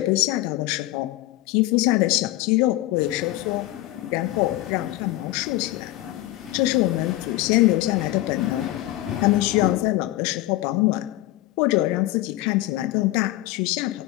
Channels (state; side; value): quieter; right; 16.7 dB